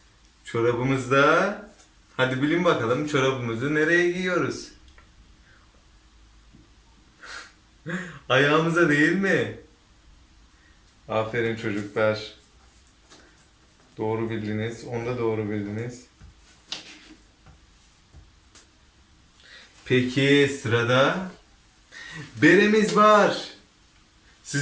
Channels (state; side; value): identical; both; correlation 1.00